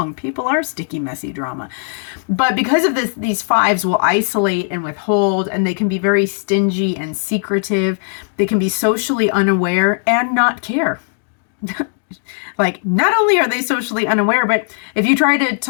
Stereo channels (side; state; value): right; silent; digital silence